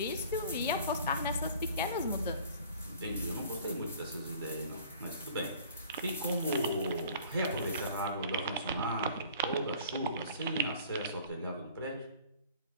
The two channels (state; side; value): inverted; both; correlation -0.49